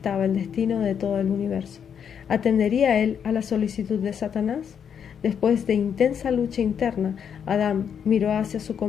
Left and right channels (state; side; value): quieter; right; 7.8 dB